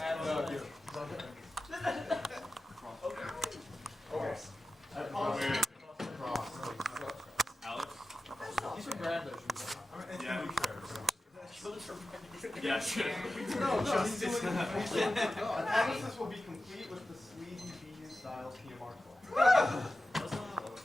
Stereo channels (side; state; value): both; normal; correlation 0.94